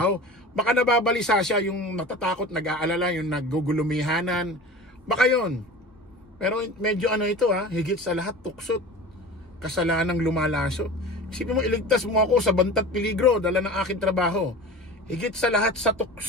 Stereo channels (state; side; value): normal; both; correlation 0.35